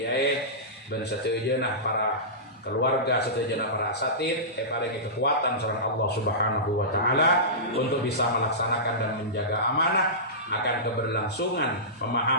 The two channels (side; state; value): both; normal; correlation -0.19